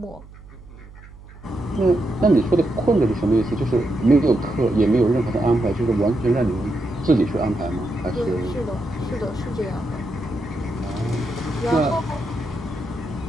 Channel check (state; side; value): noise; right; hum, 19 dB below the sound